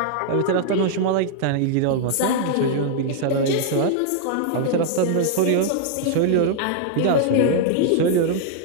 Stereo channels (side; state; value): both; different; correlation -0.01